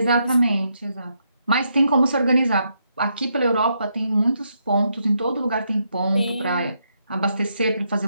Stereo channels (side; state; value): both; inverted; correlation -0.79